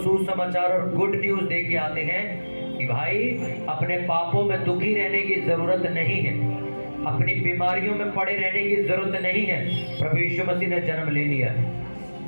और गुड न्यूज दे के आते हैं कि भाई अपने पापों में दुखी रहने की जरूरत नहीं है, अपनी बीमारियों में पड़े रहने की जरूरत नहीं है, प्रभु यीशु मसीह ने जन्म ले लिया है।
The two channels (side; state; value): both; inverted; correlation -1.00